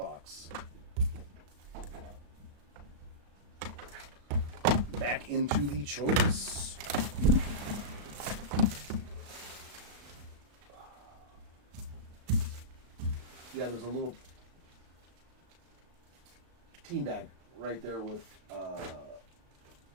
Back into the choice. Yeah, there's a little team bag right there with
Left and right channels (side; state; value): left; late; 35 ms